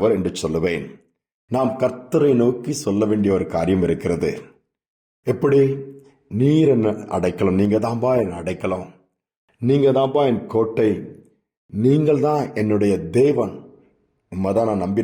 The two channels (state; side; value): identical; both; correlation 1.00